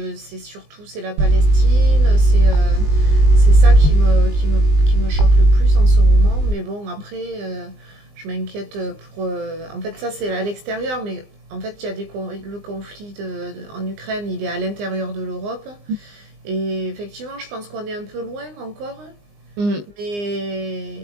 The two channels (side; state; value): left; late; 20 ms